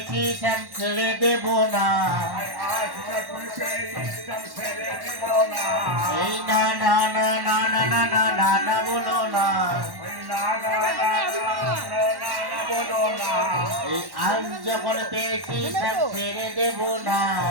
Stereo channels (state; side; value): late; left; 1.1 ms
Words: শ্যাম ছেড়ে দেব না। এই না না না না না না না না না বলো না, এই আজ যখন পেয়েছি শ্যাম ছেড়ে দেব না।